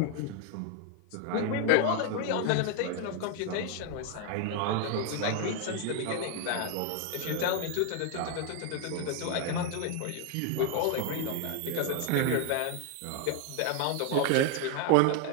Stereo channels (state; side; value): different; both; correlation 0.01